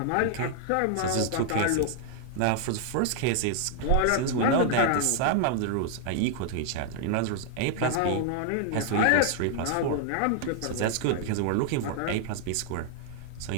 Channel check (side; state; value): both; different; correlation 0.00